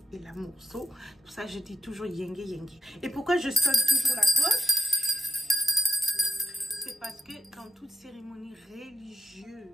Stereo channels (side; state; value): both; normal; correlation 0.79